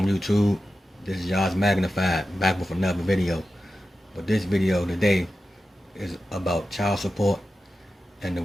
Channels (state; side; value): normal; both; correlation 0.93